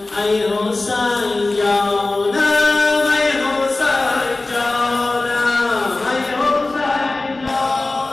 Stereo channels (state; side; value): quieter; right; 3.1 dB